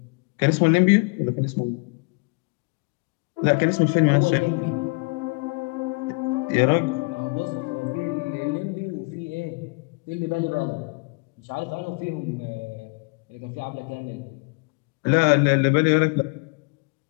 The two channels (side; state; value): right; quieter; 31.8 dB